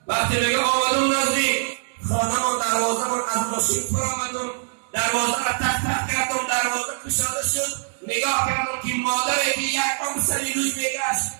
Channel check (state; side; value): silent; left; digital silence